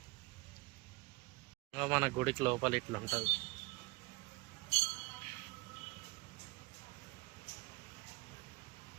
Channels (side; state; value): left; quieter; 23.3 dB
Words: మన గుడికి లోపల ఇట్లా ఉంటుంది.